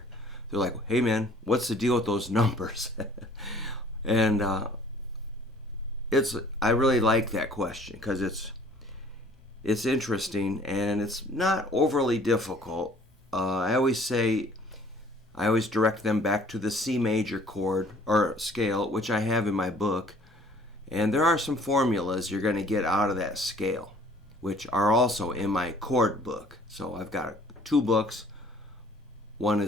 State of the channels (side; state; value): both; normal; correlation 0.55